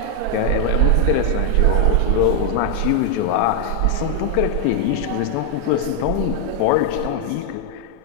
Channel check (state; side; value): different; both; correlation 0.00